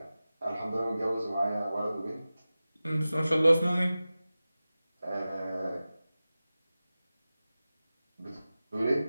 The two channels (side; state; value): both; inverted; correlation -0.96